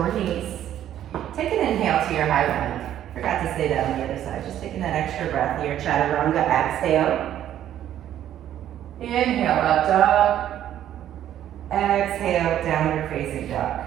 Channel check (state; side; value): quieter; left; 11.4 dB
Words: knees. Take an inhale to your high plank. Forgot to say that on the other side. Just taking that extra breath here. Chaturanga, exhale. Inhale, up dog. Exhale, downward facing dog.